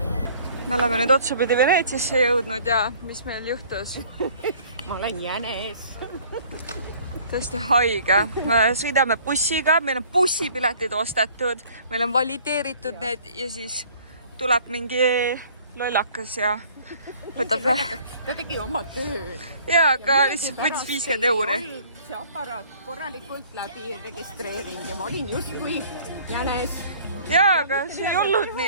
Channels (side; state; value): both; inverted; correlation -0.53